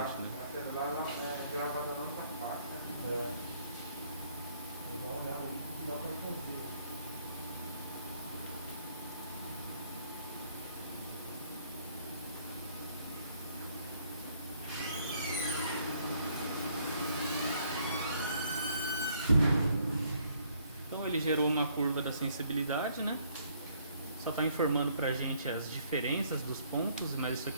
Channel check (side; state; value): both; inverted; correlation -0.66